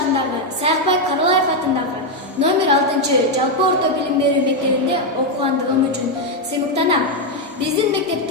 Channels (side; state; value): both; normal; correlation 0.03